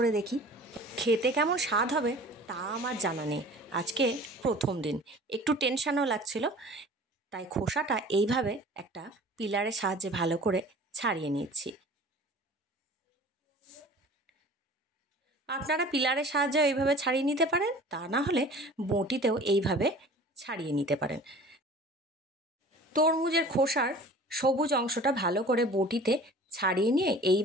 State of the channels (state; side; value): normal; both; correlation 0.44